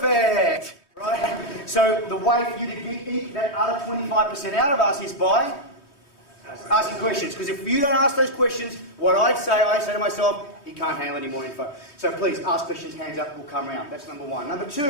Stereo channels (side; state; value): right; late; 3.2 ms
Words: Right? So the way for you to eke that other 25% out of us is by asking questions. Because if you don't ask those questions, what I say to myself, he can't handle any more info. So please, ask questions, hands up, we'll come around. That's number one. Number